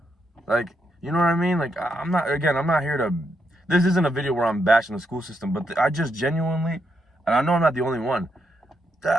Like, you know what I mean? Like, I'm not here to, this isn't a video where I'm bashing the school system, but I just genuinely, and I know I'm not the only one,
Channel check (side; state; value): both; normal; correlation 0.80